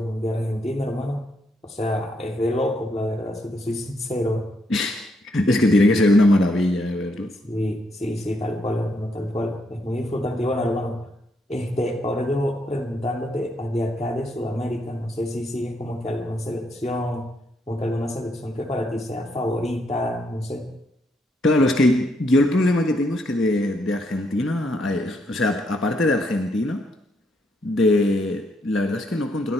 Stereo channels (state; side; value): normal; both; correlation 0.75